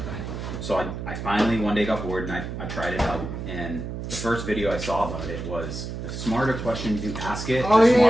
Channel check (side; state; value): right; noise; hum, 7 dB below the sound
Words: So I finally one day got bored and I tried it out. And the first video I saw about it was the smarter questions you ask it, the